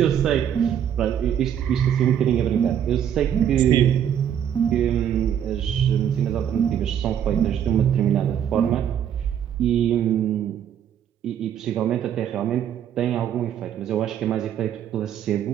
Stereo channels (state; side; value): quieter; left; 9.4 dB